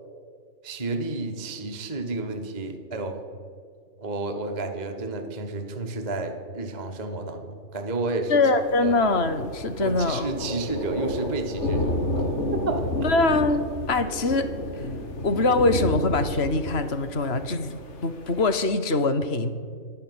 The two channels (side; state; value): right; late; 3.0 ms